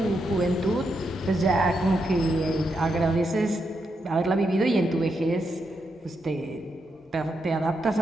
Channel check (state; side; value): normal; both; correlation 0.83